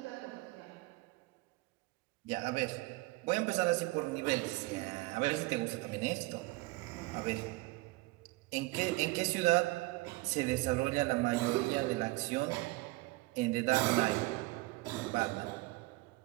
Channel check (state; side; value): quieter; left; 22.5 dB